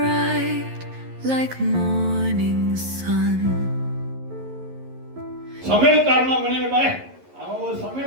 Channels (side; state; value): left; late; 11 ms